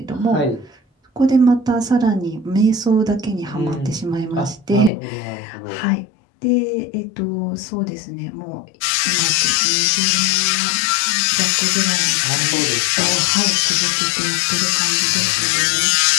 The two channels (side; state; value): right; drops out; at 4.9 s